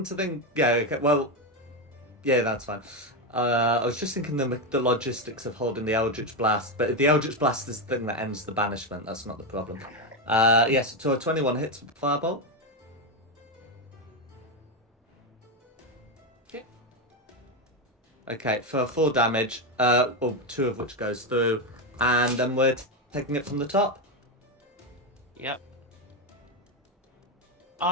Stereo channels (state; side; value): normal; both; correlation 0.09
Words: to think... Yeah, okay, well... Yeah, that's fine. I was just thinking the logistics of holding the Eldritch Blast, but if the Eldritch Blast is the thing that ends the banishment, that's not the problem. Yes, so a 21 hits with Firebolt. Okay, for 4 damage, well, 2 of which goes through, and then we're taking it from the top. Yep.